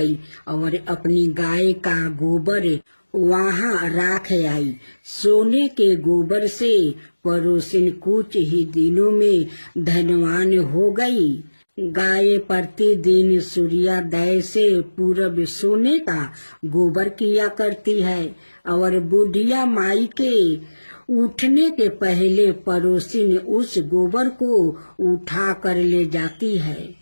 और अपनी गाय का गोबर वहां राख आई। सोने के गोबर से पड़ोसिन कुछ ही दिनों में धनवान हो गई। गाय प्रतिदिन सूर्योदय से पूर्व सोने का गोबर किया करती है और बुढ़िया माई के उठने के पहले पड़ोसिन उस गोबर को उठा कर ले जाती है।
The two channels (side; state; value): both; inverted; correlation -1.00